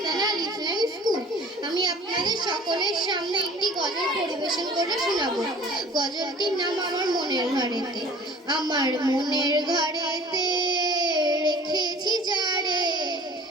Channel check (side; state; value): both; normal; correlation 0.48